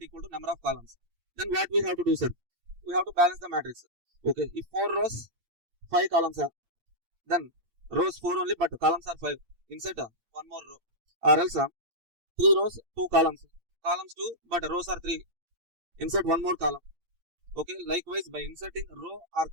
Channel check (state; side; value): late; left; 8.8 ms